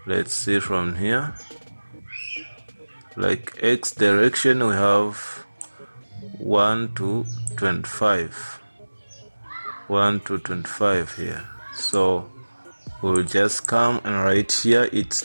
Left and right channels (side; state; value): both; inverted; correlation -1.00